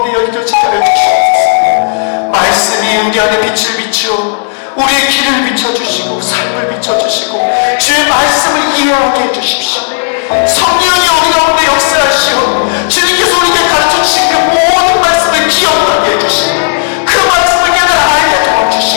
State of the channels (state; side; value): silent; right; 70 dB below the other